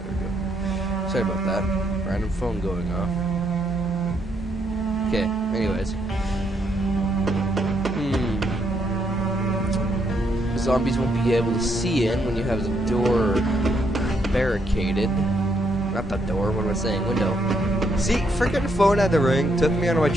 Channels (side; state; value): both; normal; correlation 0.75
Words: we go. Sorry about that. Random phone going off. Okay, anyways. The zombies won't be able to see in when you have the door barricaded. Not the door, what am I saying? Window. See, freaking phone had to ring. Took me out of my